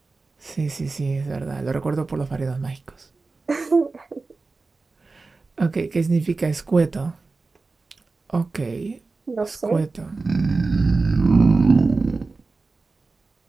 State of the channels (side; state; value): left; quieter; 3.8 dB